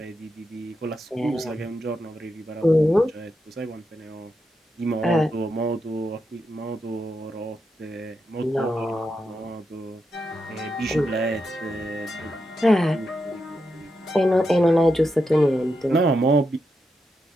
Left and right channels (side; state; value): both; normal; correlation 0.85